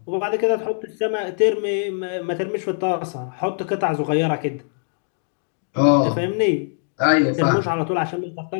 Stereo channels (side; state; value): right; silent; digital silence